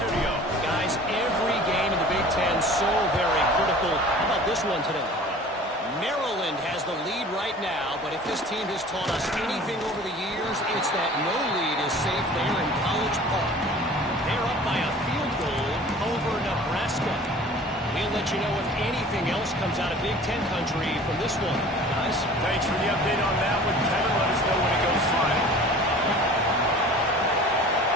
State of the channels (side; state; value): both; normal; correlation 0.45